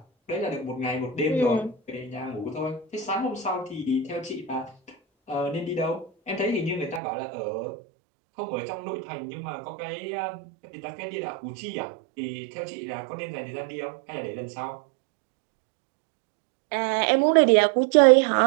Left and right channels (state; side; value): drops out; left; at 7.0 s